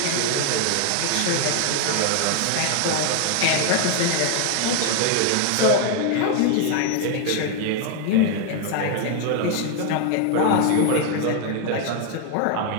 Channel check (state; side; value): different; both; correlation 0.00